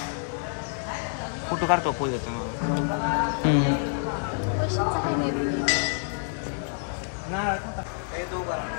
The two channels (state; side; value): silent; right; digital silence